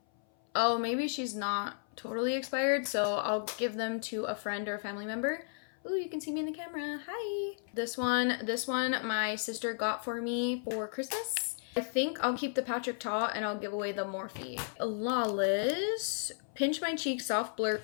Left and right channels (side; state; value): right; silent; 55 dB below the other